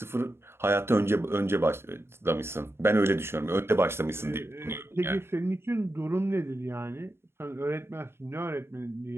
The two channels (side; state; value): left; late; 0.12 ms